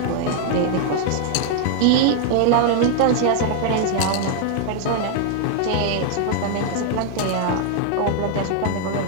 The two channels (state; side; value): different; both; correlation 0.00